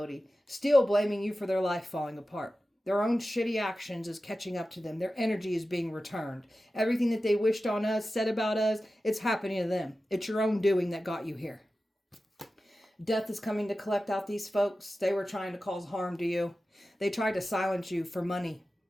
Still blaming you for their life falling apart. Their own shitty actions is catching up to them. Their energy is being returned. Everything that they wished on us, said about us, it's happening to them. It's your own doing that got you here. Death is coming to collect out these folks. They were trying to cause harm to you. They tried to silence you for money.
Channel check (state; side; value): normal; both; correlation 0.94